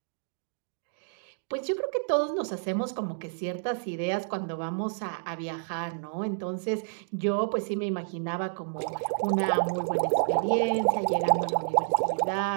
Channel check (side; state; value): left; silent; digital silence